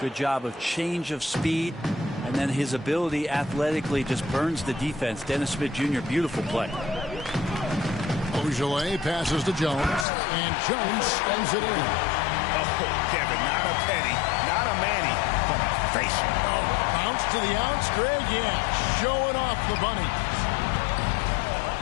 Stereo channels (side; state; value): right; drops out; at 10.1 s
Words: job of change of speed. And then his ability athletically just burns the defense. Dennis Smith Jr., beautiful play. Ojeleye passes to Jones. And Jones spins it in. Oh, Kevin, not a penny, not a Manny, but a facial. Oh, bounce to the ounce, Greg. Yeah, showing off the bunny.